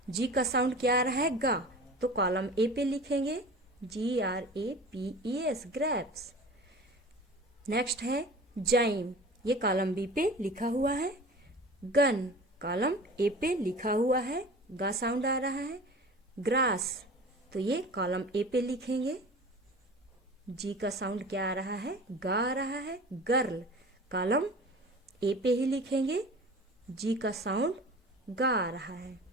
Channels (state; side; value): normal; both; correlation 0.39